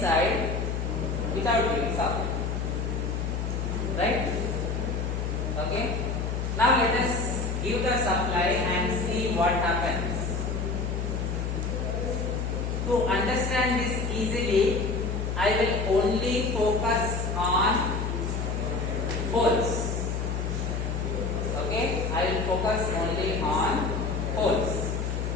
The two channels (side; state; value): left; noise; hum, 1 dB below the sound